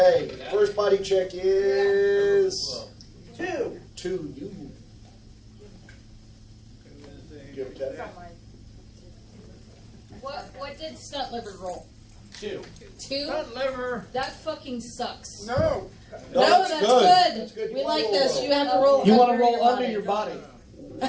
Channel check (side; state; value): both; identical; correlation 1.00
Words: first body check is 2. You. You have a It's test? not mine. What did stunt liver roll? 2. 2? Stunt liver. That fucking sucks. No. No, that's good. That's good. You We wanna like roll this. low. You have to roll. You want to under roll your under body. your body.